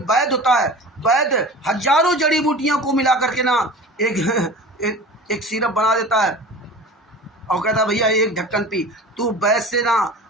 होता है, वैद्य हजारों जड़ी बूटियों को मिला करके ना एक सिरप बना देता है और कहता है भैया एक ढक्कन पी। तू वैद्य से ना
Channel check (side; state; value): both; normal; correlation 0.37